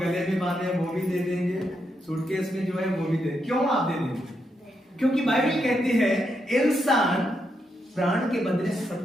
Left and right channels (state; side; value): normal; both; correlation 0.81